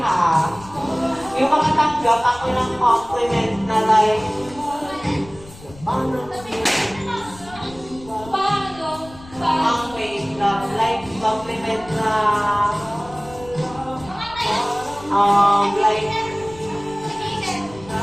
ha, yung mga tanggap ako ng compliment na like, Paano? ang wait lang, like compliment na, like,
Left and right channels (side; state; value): left; noise; rumble, 20 dB below the sound